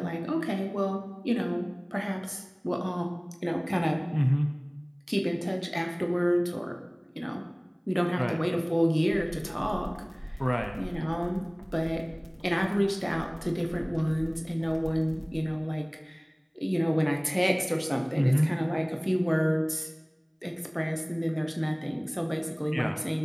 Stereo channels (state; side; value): identical; both; correlation 1.00